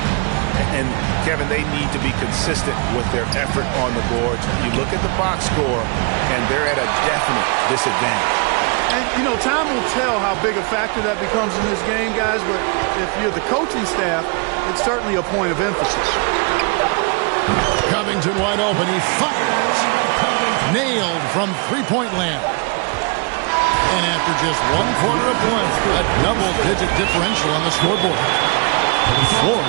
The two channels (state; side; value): quieter; left; 33.9 dB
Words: And, Kevin, they need to be consistent with their effort on the boards. You look at the box score, and they're at a definite disadvantage. And, you know, time will tell how big a factor that becomes in this game, guys, but if you're the coaching staff, it's certainly a point of emphasis. Covington wide open. He fires. Nailed from three-point land. And after just 1 quarter of play, a double-digit differential on the scoreboard.